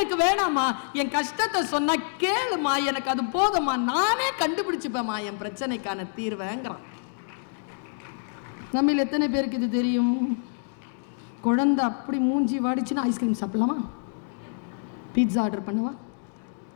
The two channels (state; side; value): silent; right; digital silence